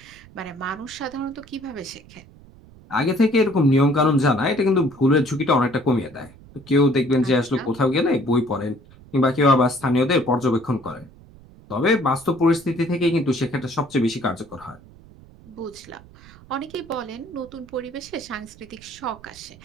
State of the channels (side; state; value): right; noise; rumble, 23 dB below the sound